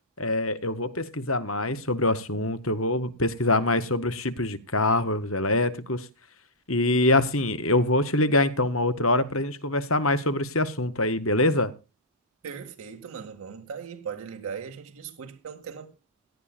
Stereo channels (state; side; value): normal; both; correlation -0.15